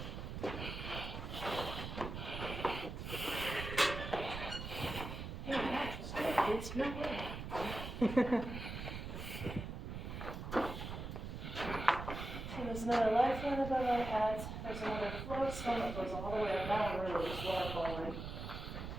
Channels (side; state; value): right; noise; rumble, 6 dB below the sound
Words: It's no way. So there's another lifeline above our heads. There's another float stone that goes all the way up. That one really is waterfalling.